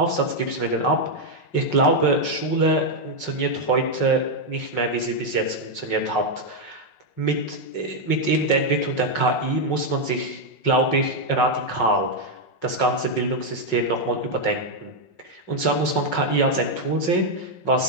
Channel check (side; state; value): right; late; 5.5 ms